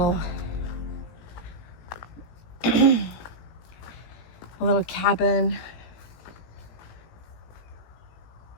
a little cabin.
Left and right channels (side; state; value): right; late; 18 ms